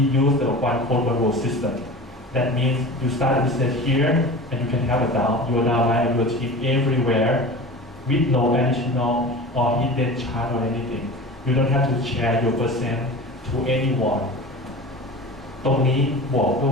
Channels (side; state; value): both; normal; correlation 0.34